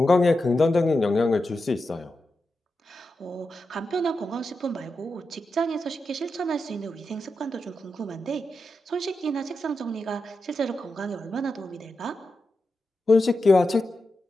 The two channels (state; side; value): normal; both; correlation 0.89